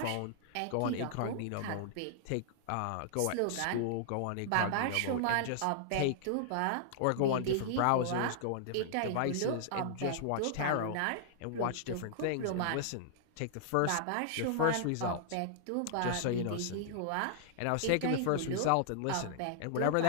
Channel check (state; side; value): different; both; correlation -0.01